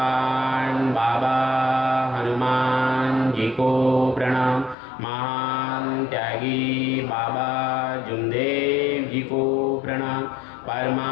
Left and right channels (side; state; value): right; drops out; at 4.8 s